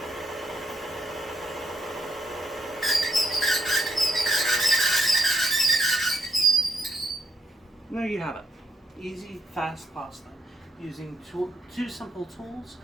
And there you have it. Easy, fast pasta. Using two simple tools.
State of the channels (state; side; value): normal; both; correlation 0.79